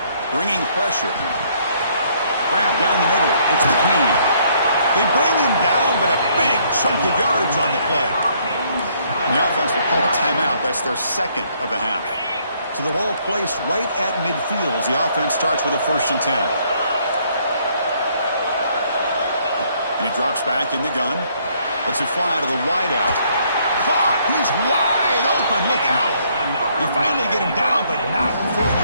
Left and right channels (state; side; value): inverted; both; correlation -0.67